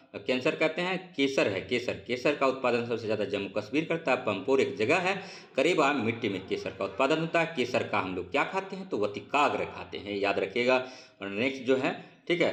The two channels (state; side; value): identical; both; correlation 1.00